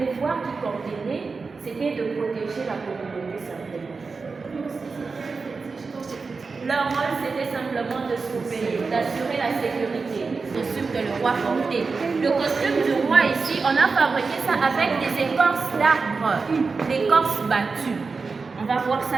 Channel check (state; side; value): quieter; left; 4.5 dB